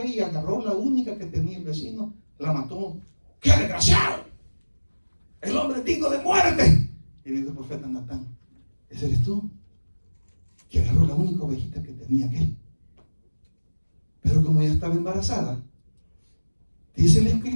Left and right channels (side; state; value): both; inverted; correlation -1.00